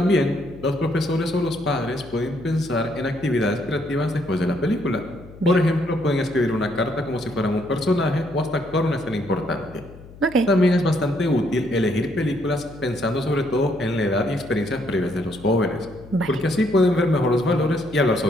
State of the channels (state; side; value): noise; left; hum, 19 dB below the sound